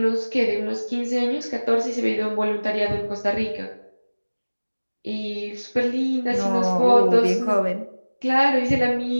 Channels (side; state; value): both; inverted; correlation -1.00